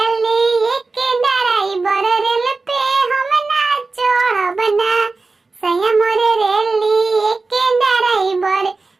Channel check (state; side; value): quieter; left; 3.8 dB